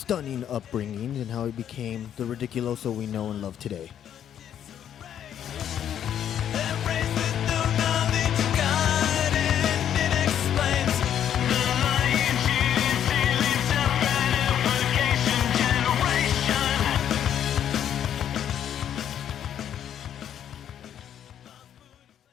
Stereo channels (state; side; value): quieter; right; 9.7 dB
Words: upbringing and how he became the Ridiculoso we know and love today.